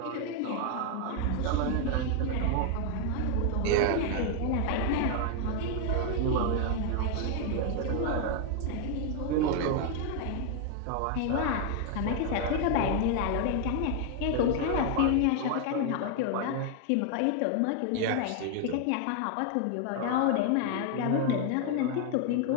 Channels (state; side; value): different; both; correlation 0.00